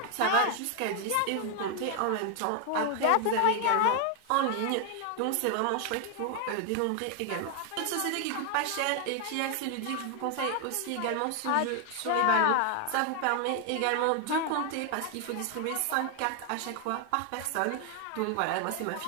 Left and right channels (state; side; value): different; both; correlation 0.00